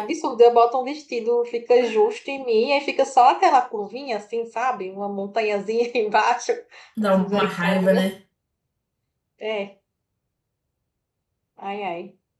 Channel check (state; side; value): identical; both; correlation 1.00